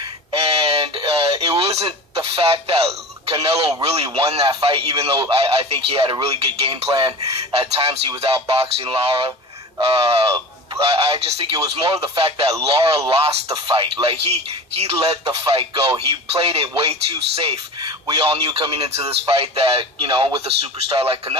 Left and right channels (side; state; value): both; normal; correlation 0.33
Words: and it wasn't the fact that Canelo really won that fight, even though I think he had a really good game plan. At times he was outboxing Lara. I just think it was more of the fact that Lara lost the fight. Like, he let the fight go. He played it way too safe. We all knew coming into this fight that, you know, with a superstar like